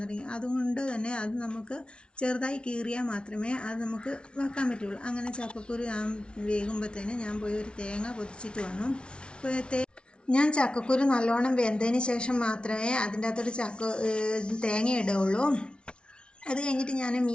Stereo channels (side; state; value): right; late; 0.057 ms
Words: തുടങ്ങി. അതുകൊണ്ട് തന്നെ അത് നമുക്ക് ചെറുതായി കീറിയാൽ മാത്രമേ അത് നമുക്ക് വെക്കാൻ പറ്റുള്ളൂ. അങ്ങനെ ചക്കക്കുരു വേകുമ്പോഴത്തേന് ഞാൻ പോയി ഒരു തേങ്ങ പൊതിച്ചിട്ട് വന്നു. ഞാൻ ചക്കക്കുരു നല്ലോണം വെന്തതിന് ശേഷം മാത്രമേ അതിൻ്റെ അകത്തോട്ട് തേങ്ങ ഇടുകയുള്ളൂ. അത് കഴിഞ്ഞിട്ട് ഞാൻ